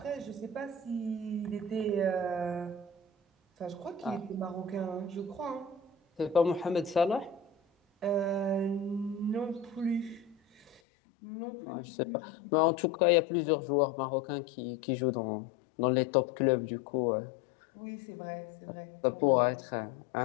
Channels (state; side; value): drops out; right; at 10.8 s